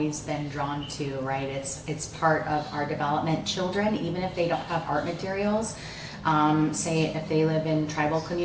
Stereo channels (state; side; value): identical; both; correlation 1.00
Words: been drawn to, right? It's part of our development. Children, even if they don't have art materials, say if they live in tribal